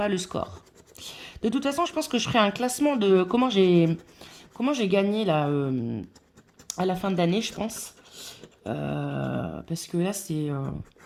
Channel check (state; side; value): identical; both; correlation 1.00